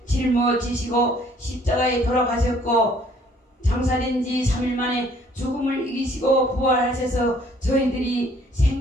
짊어지시고 십자가에 돌아가셨고 장사된 지 3일 만에 죽음을 이기시고 부활하셔서 저희들이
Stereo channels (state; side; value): normal; both; correlation 0.60